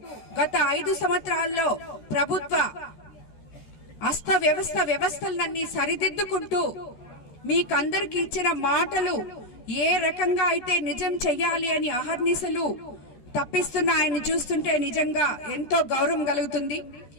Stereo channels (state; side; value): late; right; 13 ms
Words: గత 5 సంవత్సరాల్లో ప్రభుత్వ వ్యవస్థలన్నీ సరిదిద్దుకుంటూ మీకందరికి ఇచ్చిన మాటలు ఏ రకంగా అయితే నిజం చెయ్యాలి అని అహర్నిశలు తప్పిస్తున్న ఆయన చూస్తుంటే నిజంగా ఎంతో గౌరవం కలుగుతుంది.